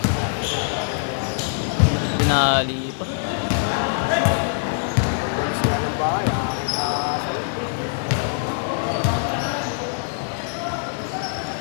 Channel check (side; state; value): right; silent; digital silence